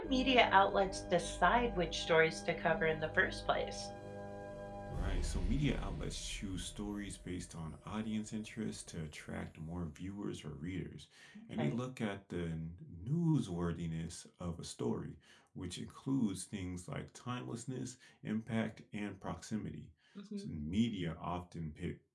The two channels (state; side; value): identical; both; correlation 1.00